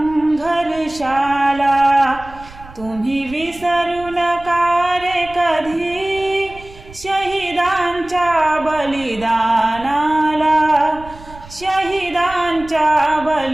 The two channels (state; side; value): noise; right; rumble, 19 dB below the sound